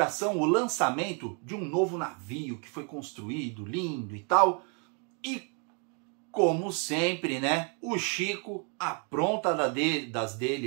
o lançamento de um novo navio que foi construído, lindo e tal. E como sempre, né, o Chico apronta das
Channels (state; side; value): quieter; left; 38.1 dB